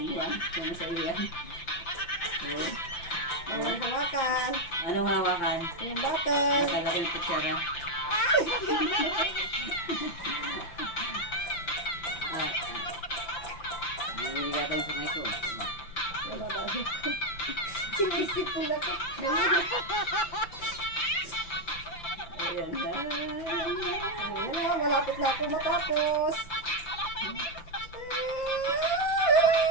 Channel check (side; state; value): right; late; 5.9 ms